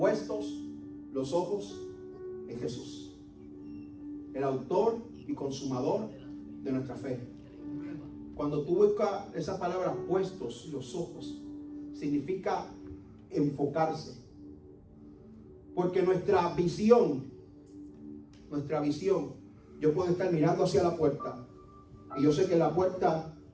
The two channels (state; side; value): identical; both; correlation 1.00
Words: los ojos en Jesús, el autor y consumador de nuestra fe. Cuando tú buscas esa palabra, puestos los ojos, significa enfocarse. Porque nuestra visión, yo puedo estar mirando hacia la puerta y yo sé que la puerta,